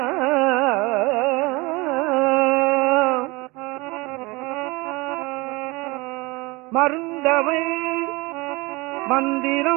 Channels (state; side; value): quieter; left; 24.5 dB